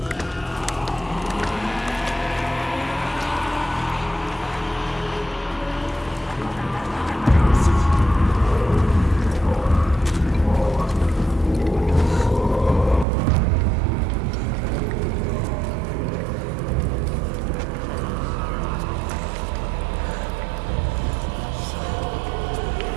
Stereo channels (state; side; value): drops out; left; at 13.1 s